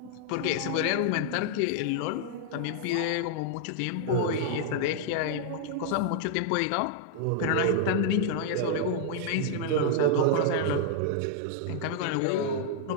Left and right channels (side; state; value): both; different; correlation 0.00